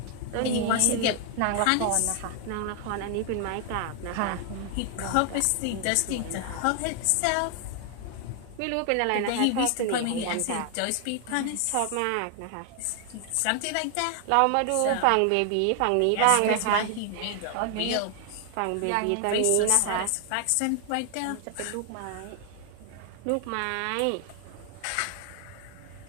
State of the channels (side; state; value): both; different; correlation 0.00